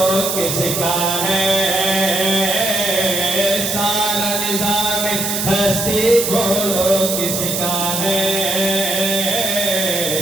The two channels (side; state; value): right; noise; hiss, 2 dB below the sound